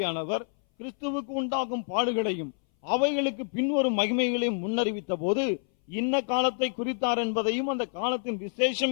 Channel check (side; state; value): right; silent; 59 dB below the other